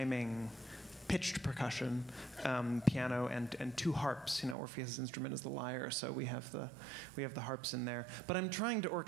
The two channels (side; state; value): left; drops out; at 4.5 s